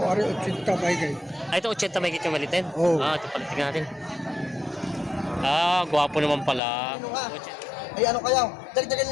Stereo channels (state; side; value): drops out; right; at 6.6 s